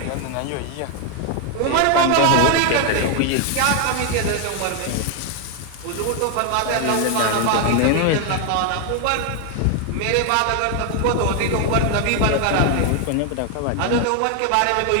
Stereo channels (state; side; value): different; both; correlation 0.01